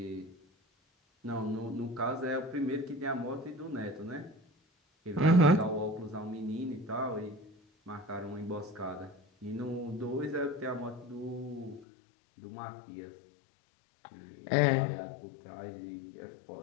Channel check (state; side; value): drops out; right; at 11.9 s